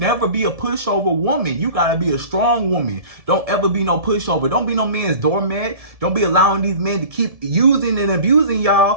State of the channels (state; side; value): late; left; 1.7 ms